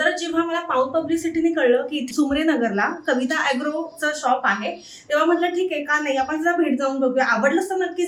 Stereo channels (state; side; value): identical; both; correlation 1.00